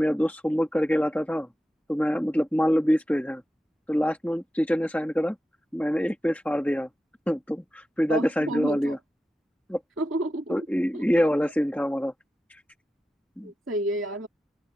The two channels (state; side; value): normal; both; correlation 0.92